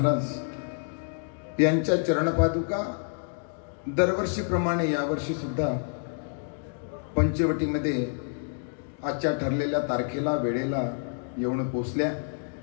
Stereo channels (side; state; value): right; silent; digital silence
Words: यांच्या चरणपादुका दरवर्षीप्रमाणे यावर्षी सुद्धा पंचवटीमध्ये आजच्या ठरलेल्या तारखेला वेळेला येऊन पोचल्या.